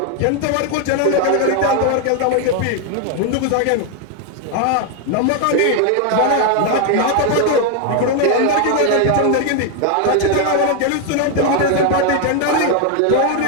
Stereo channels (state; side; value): different; both; correlation 0.01